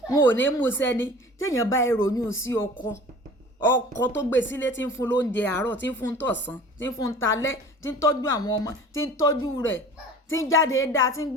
wọn ò ní mú sẹ́ni tí èèyàn bá ìròyìn sí ọkọ tó gbé sílé tí ń fún lóúnjẹ àárọ̀ tí ń fún tọ̀sán tí ń fún talẹ́ tí ń tọ́jú àwọn ọmọ tí ń tọ́jú rẹ̀ tí ń jáde dáa tí ń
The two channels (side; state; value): both; normal; correlation 0.43